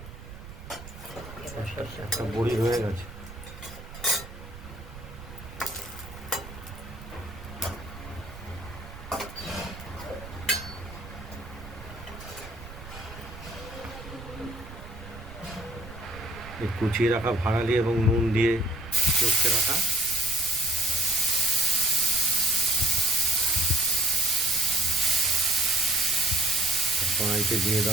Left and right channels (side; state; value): right; noise; rumble, 14 dB below the sound